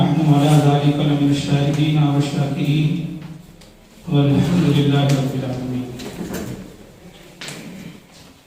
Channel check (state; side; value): identical; both; correlation 1.00